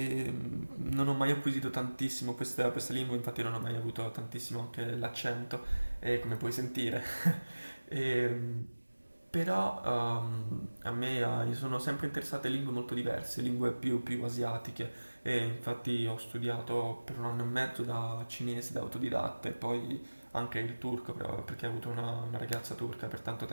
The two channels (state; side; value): inverted; both; correlation -1.00